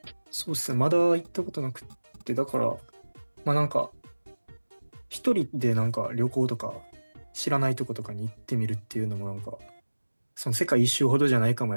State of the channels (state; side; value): inverted; both; correlation -1.00